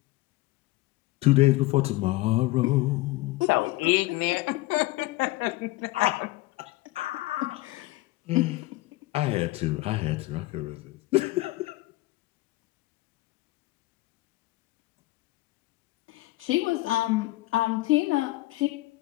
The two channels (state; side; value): quieter; right; 19.5 dB